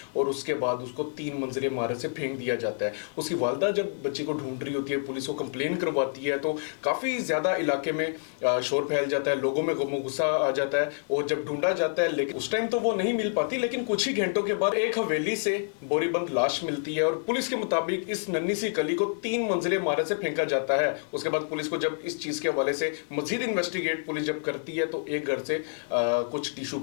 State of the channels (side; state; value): right; silent; digital silence